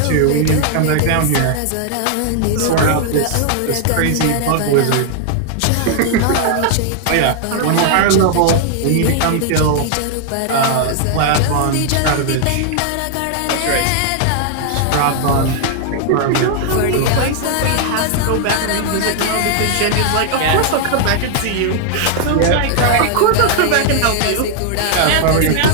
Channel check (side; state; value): both; different; correlation 0.00